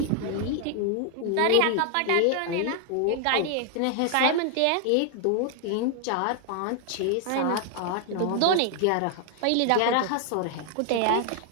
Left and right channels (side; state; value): both; different; correlation 0.00